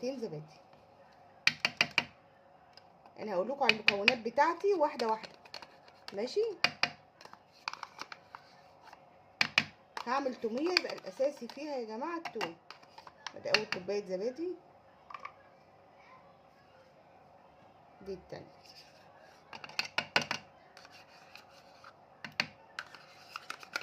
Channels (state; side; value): identical; both; correlation 1.00